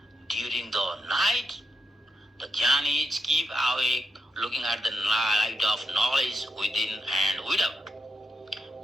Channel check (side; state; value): both; normal; correlation 0.85